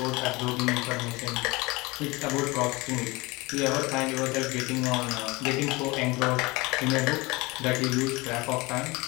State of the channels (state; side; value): quieter; right; 23.7 dB